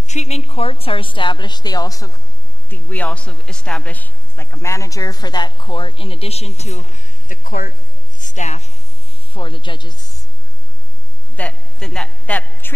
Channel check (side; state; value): right; noise; hum, 20 dB below the sound